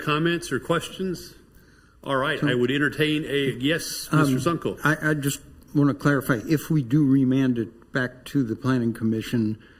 or questions? All right, I would entertain yes, Mr. Zunkel. I just want to clarify, if we do remand it back to the Planning Commission,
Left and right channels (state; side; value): identical; both; correlation 1.00